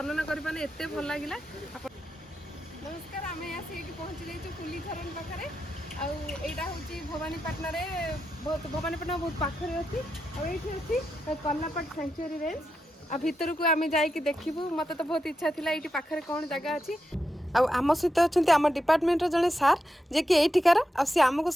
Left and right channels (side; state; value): both; normal; correlation 0.87